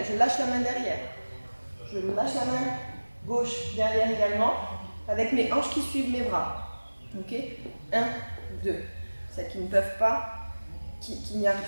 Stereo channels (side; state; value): both; inverted; correlation -1.00